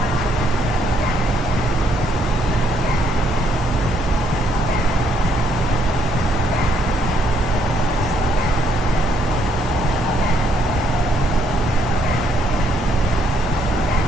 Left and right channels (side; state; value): both; normal; correlation 0.71